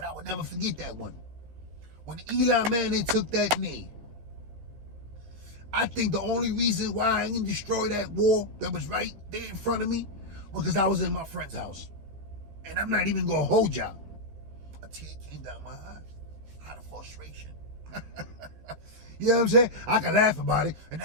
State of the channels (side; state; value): left; late; 15 ms